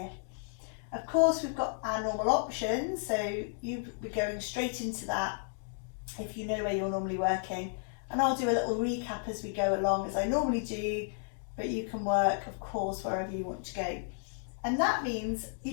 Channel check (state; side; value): silent; right; digital silence